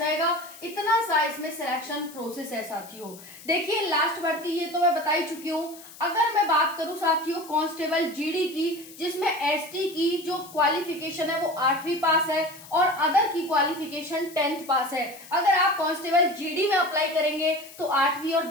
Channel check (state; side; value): noise; left; hiss, 18 dB below the sound